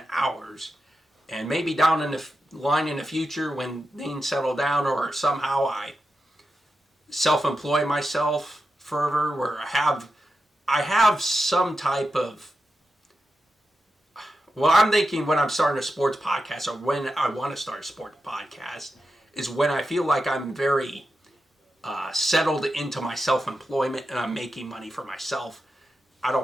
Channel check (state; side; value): normal; both; correlation 0.90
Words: hours, and maybe down in the line in the future when things settle down, or somehow I self-employ myself further, where I have some type of, well, I'm thinking when I'm starting a sports podcast, or when I want to start a sports podcast, is when I feel like I'm very settled into my self-employment and I'm making money for myself. I